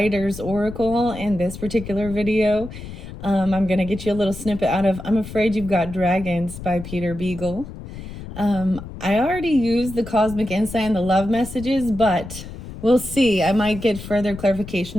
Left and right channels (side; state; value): left; noise; rumble, 12 dB below the sound